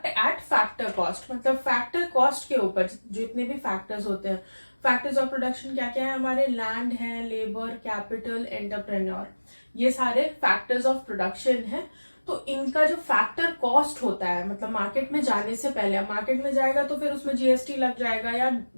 at factor cost, मतलब फैक्टर कॉस्ट के ऊपर जितने भी फैक्टर्स होते हैं. फैक्टर्स ऑफ प्रोडक्शन क्या क्या है हमारे? लैंड है, लेबर, कैपिटल, एंटरप्रेन्योर, ये सारे फैक्टर्स ऑफ प्रोडक्शन है. तो इनका जो फैक्टर कॉस्ट होता है, मतलब मार्केट में जाने से पहले, मार्केट में जाएगा तो फिर उसमें GST लग जाएगा या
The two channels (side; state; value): both; inverted; correlation -1.00